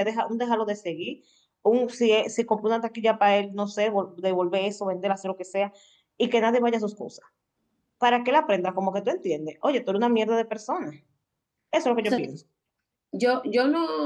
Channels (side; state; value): both; identical; correlation 1.00